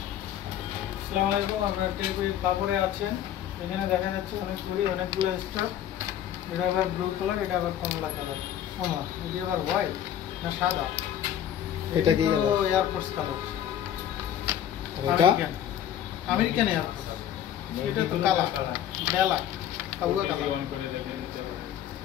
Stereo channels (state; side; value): quieter; right; 10.6 dB